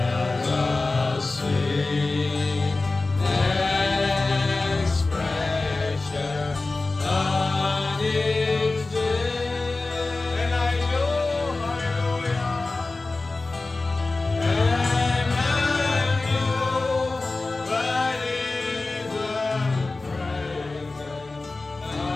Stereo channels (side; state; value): right; quieter; 3.4 dB